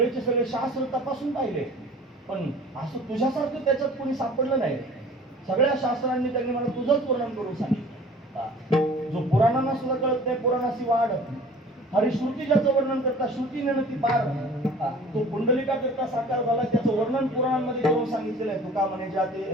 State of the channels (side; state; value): both; normal; correlation 0.46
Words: सगळे शास्त्र तपासून पाहिले, पण असं तुझ्यासारखं त्याच्यात कोणी सापडलं नाही. सगळ्या शास्त्रांनी त्यांनी मला तुझंच वर्णन करून सांगितलं. जो पुराणांना सुद्धा कळत नाही, पुराणाची वाढ. हरिश्रुती ज्याचं वर्णन करता, श्रुतीने ती पार, तो पुंडलिका करता साकार झाला, त्याचं वर्णन पुराणांमध्ये करून सांगितलेलं आहे. तुका म्हणे जाते